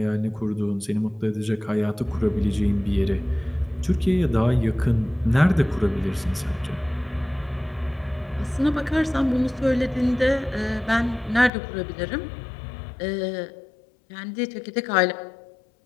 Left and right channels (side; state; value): right; drops out; at 11.5 s